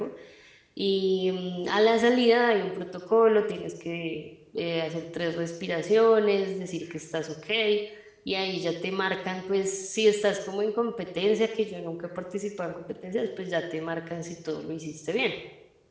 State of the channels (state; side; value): identical; both; correlation 1.00